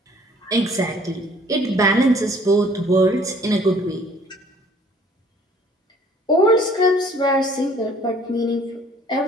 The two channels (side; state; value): both; normal; correlation 0.56